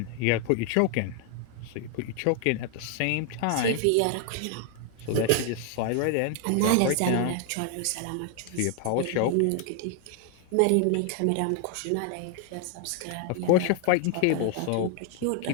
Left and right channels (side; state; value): both; different; correlation 0.00